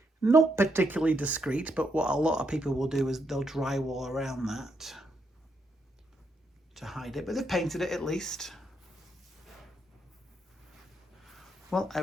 Not particularly discreet, but what a lot of people will do is they'll drywall around that to hide it, but they've painted it at least. Well, I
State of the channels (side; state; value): both; normal; correlation 0.78